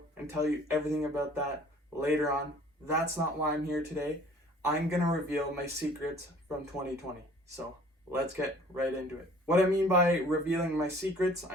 and tell you everything about that later on. That's not why I'm here today. I'm going to reveal my secrets from 2020. So let's get right into it. What I mean by revealing my secrets,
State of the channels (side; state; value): both; normal; correlation 0.52